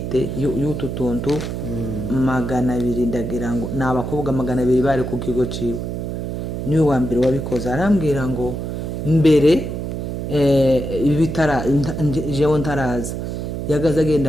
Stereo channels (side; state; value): right; noise; hum, 4 dB below the sound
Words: y'utu tuntu 200 ndagira ngo n'abakobwa 200 bari ku kigo ciwe, niwe wa mbere wabikoze. Arambwira ngo mbere ibitara jewe ntaraza yagaze